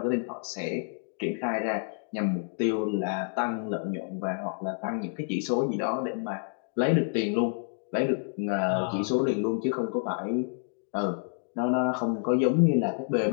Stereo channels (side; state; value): right; silent; 57 dB below the other